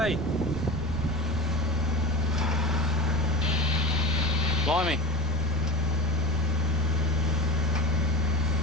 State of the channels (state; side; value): normal; both; correlation 0.30